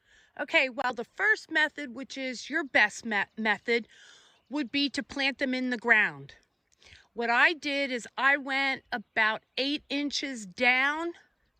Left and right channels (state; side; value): identical; both; correlation 1.00